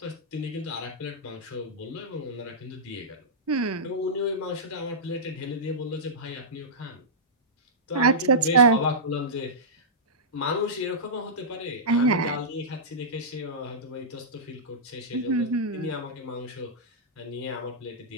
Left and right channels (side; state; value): both; normal; correlation -0.15